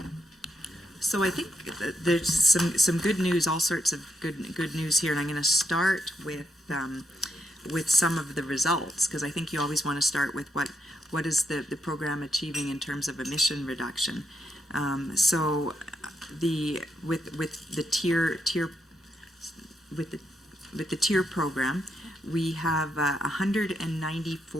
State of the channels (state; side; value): normal; both; correlation 0.81